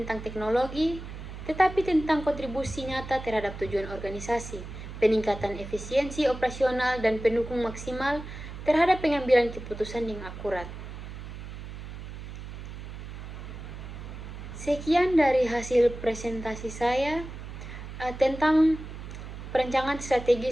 teknologi, tetapi tentang kontribusi nyata terhadap tujuan organisasi, peningkatan efisiensi operasional, dan pendukung maksimal terhadap pengambilan keputusan yang akurat. Sekian dari hasil presentasi saya tentang perencanaan strategi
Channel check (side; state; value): right; noise; hum, 10 dB below the sound